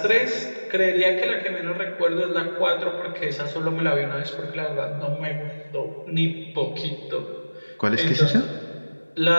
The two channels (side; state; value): both; inverted; correlation -1.00